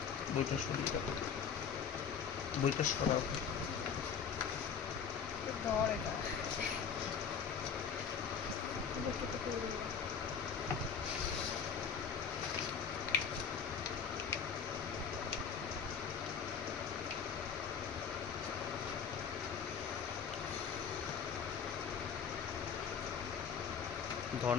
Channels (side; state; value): right; quieter; 7.0 dB